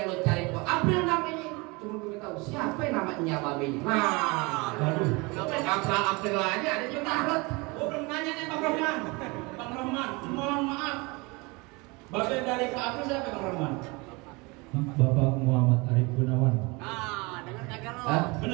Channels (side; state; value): left; quieter; 26.4 dB